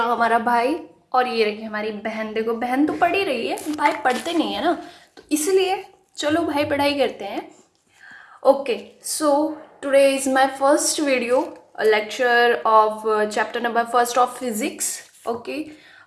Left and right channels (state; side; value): identical; both; correlation 1.00